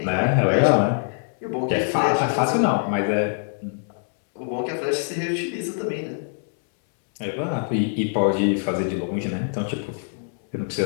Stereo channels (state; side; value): silent; right; 63 dB below the other